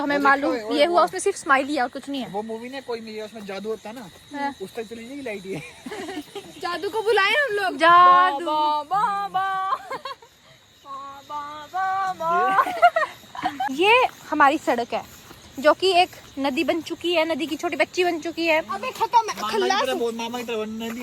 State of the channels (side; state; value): both; identical; correlation 1.00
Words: हमें मालूम ये हुआ उसमें सिर्फ स्माइल ही और कुछ नहीं है। वो मूवी ने कोई नहीं, उसमें जादू होता ना, उस तक चली जाएगी लाइट ये। जादू को बुलाए हम लोग। जादू ये हमारी सड़क है जो कि एक नदी बन चुकी है, नदी की छोटी बच्ची बन चुकी है। अबे खत्म है, खल्लास। मामा की तरह